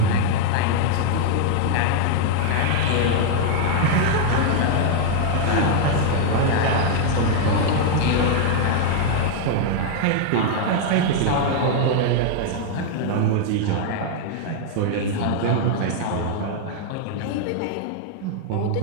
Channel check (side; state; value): both; different; correlation 0.00